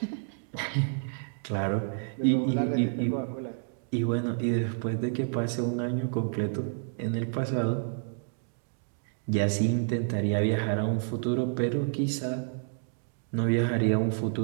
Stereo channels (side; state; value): left; silent; digital silence